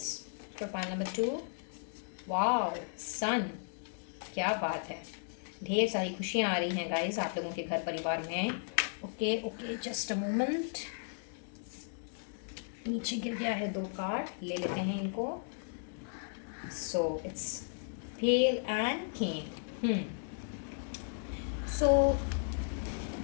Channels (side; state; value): right; silent; digital silence